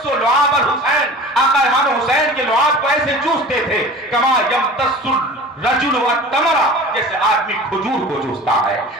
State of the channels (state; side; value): normal; both; correlation 0.39